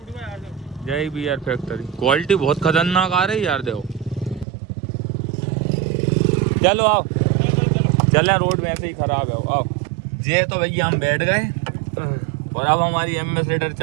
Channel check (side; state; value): left; drops out; at 4.5 s